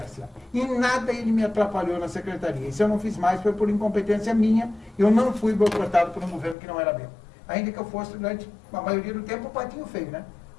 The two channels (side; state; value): right; drops out; at 6.6 s